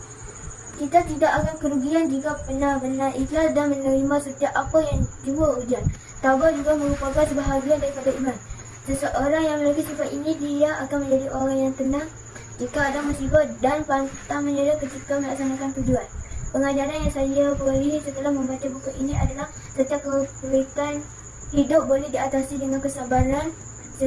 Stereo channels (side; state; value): both; identical; correlation 1.00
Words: Kita tidak akan kerugian jika benar-benar ikhlas dan menerima setiap apa yang jua ujian. Tabah juga merupakan sebahagian daripada iman. Seseorang yang memiliki sifat ini, dia akan menjadi orang yang tenang jika ada musibah dan pantang menyerah ketika melaksanakan tujuan. Pengajaran yang saya peroleh setelah membaca buku ini adalah setiap kesulitan hidup boleh diatasi dengan kesabaran.